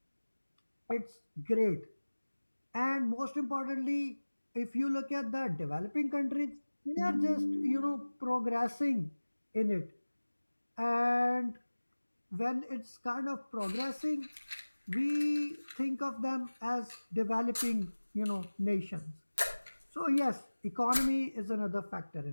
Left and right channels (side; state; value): both; inverted; correlation -1.00